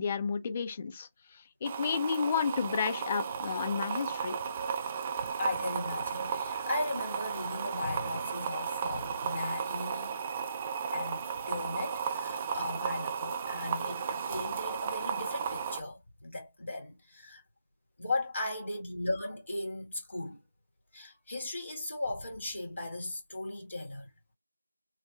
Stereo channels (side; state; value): both; inverted; correlation -0.71